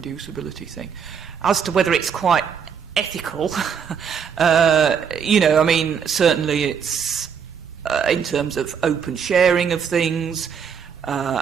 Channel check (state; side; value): quieter; left; 7.1 dB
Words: thing. As to whether it's quite ethical, certainly it's in terms of open sharing of things,